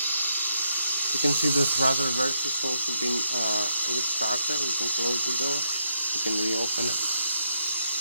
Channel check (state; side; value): inverted; both; correlation -0.79